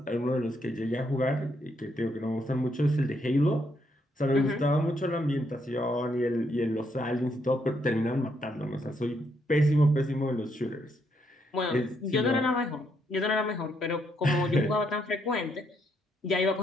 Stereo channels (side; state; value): both; normal; correlation 0.75